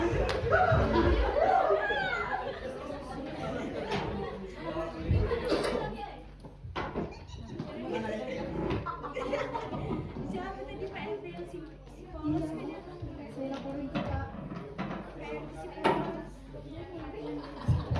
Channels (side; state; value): both; identical; correlation 1.00